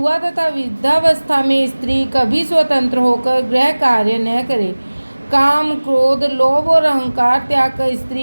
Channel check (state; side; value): inverted; both; correlation -1.00